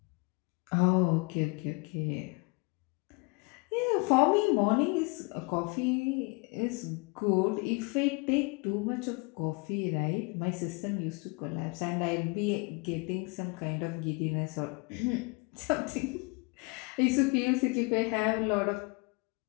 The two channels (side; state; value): right; quieter; 30.0 dB